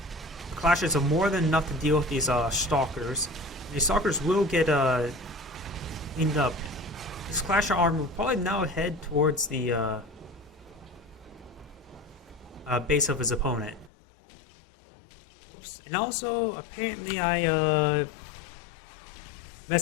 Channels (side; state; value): right; drops out; at 13.9 s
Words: Clashes are more than enough to deal with these stalkers. These stalkers will get cleaned up. This Clasher armor will probably now head towards the base of his opponent. Oops. And also, apparently I